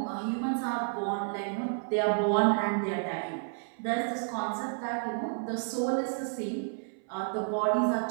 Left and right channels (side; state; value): left; silent; 57 dB below the other